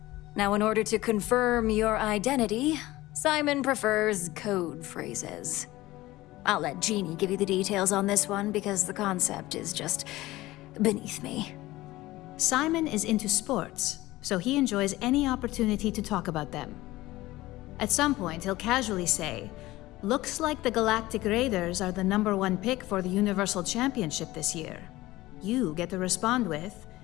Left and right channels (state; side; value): quieter; right; 17.9 dB